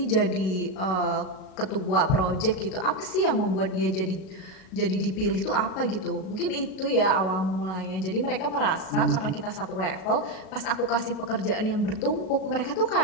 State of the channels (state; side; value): late; right; 37 ms